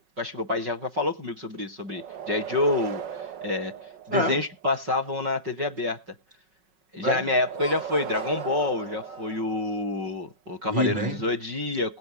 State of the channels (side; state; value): left; late; 5.4 ms